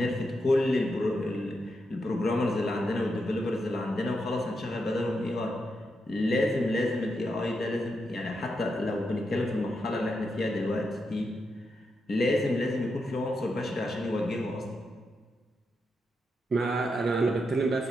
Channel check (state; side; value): normal; both; correlation 0.84